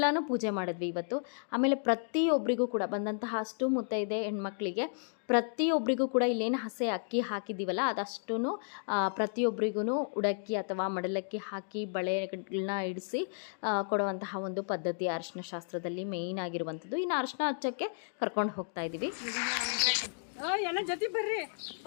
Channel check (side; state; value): right; silent; digital silence